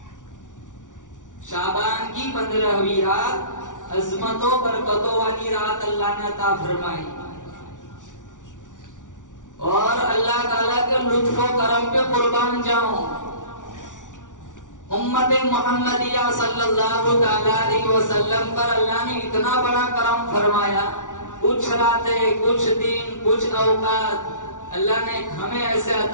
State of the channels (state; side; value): late; right; 0.87 ms